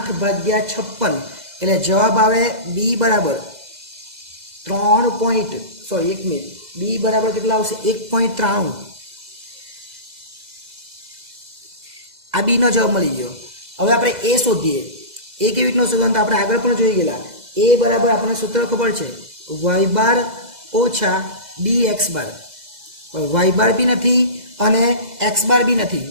ભાગ્યા 56 એટલે જવાબ આવે બી બરાબર 1 મિનિટ બી બરાબર કેટલા આવશે 1.93. આ બી નો જવાબ મળી ગયો. હવે આપણે એ શોધીએ. એ કેવી રીતનો શોધવાનું તો આપણે આગળ પણ જોઈ ગયેલા. એ બરાબર આપણને સૂત્ર ખબર છે વાય બાર ઓછા બી એક્સ બાર. વાય બાર બી નથી અને એક્સ બાર બી નથી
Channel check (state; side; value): late; left; 2.0 ms